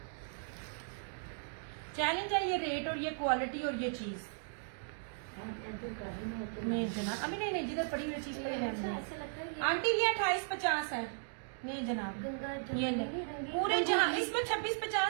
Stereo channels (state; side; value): silent; left; digital silence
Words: चैलेंज है ये रेट और ये क्वालिटी और ये चीज। नहीं जनाब, अभी नहीं जिधर पड़ी हुई चीज पर रहनी है। आंटी ये 2850 है। नहीं जनाब, ये ले पूरे जहाँ इसमें